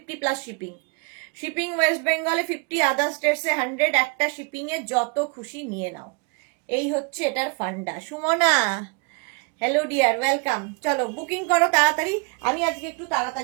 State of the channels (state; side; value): quieter; left; 33.0 dB